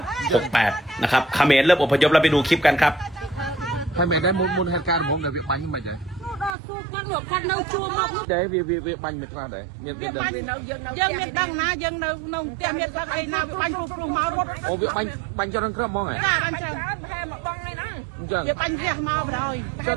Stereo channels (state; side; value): drops out; left; at 6.6 s